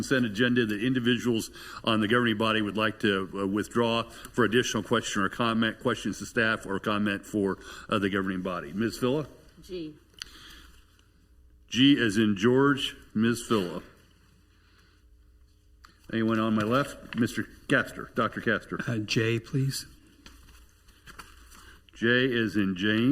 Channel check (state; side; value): identical; both; correlation 1.00